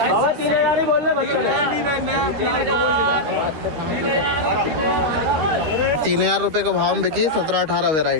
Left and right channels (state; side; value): late; left; 13 ms